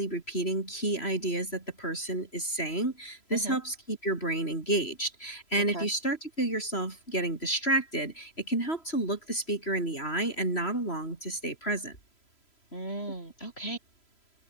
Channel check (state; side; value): late; right; 3.0 ms